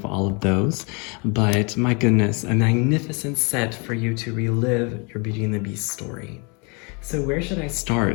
all of those. But my goodness, a magnificent set for you to relive your Beauty and the Beast story. So where should I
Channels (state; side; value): quieter; right; 32.2 dB